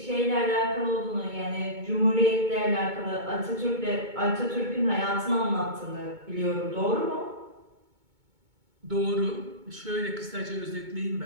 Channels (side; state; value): left; late; 2.2 ms